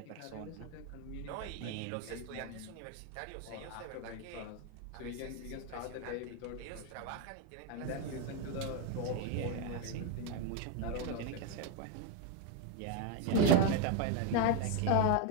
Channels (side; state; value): both; different; correlation 0.01